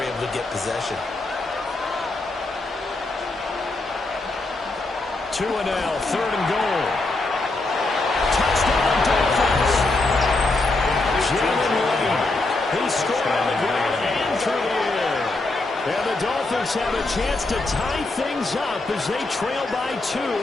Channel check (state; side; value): quieter; right; 3.1 dB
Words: able to get possession. 2 and now, third and goal. Touchdown Dolphins. Jalen Lane. He scored on the ground and through the air. And the Dolphins have a chance to tie things up as they trail by 2